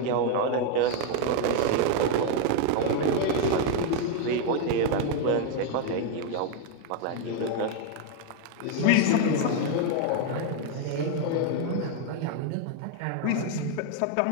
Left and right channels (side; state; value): both; different; correlation 0.01